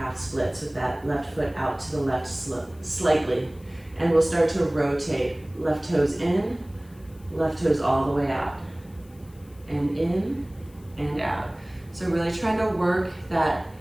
splits with that left foot out to the left slightly. And we'll start to rotate. Left toes in, left toes all the way out. And in and out. So really trying to work that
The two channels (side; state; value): left; noise; hiss, 28 dB below the sound